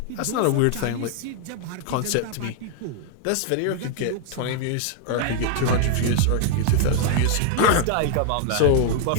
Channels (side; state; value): both; different; correlation 0.00